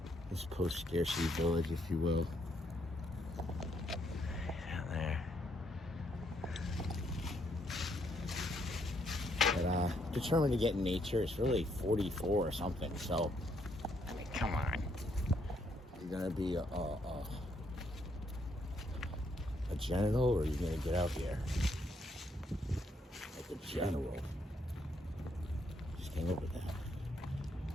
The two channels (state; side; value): normal; both; correlation 0.73